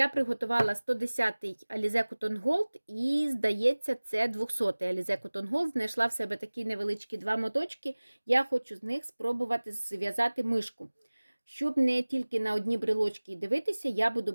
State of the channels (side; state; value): both; inverted; correlation -1.00